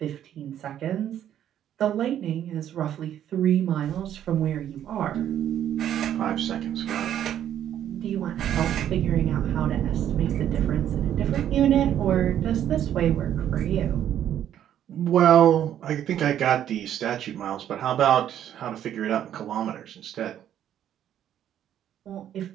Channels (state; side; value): quieter; left; 10.6 dB